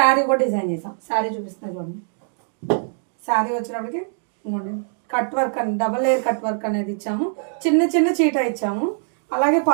కూడా డిజైన్ చేసాం. శారీ చూపిస్తున్నాను చూడండి. శారీ వచ్చేటప్పటికి కట్ వర్క్ అని డబల్ లేయర్ కట్ వర్క్ అనేది ఇచ్చాము. చిన్న చిన్న చీట ఇచ్చాము. అలాగే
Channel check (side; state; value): left; silent; 64 dB below the other